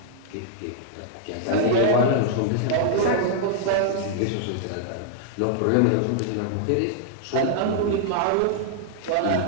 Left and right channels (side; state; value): both; different; correlation -0.01